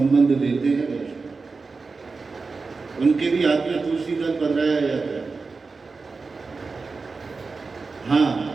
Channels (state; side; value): quieter; left; 4.3 dB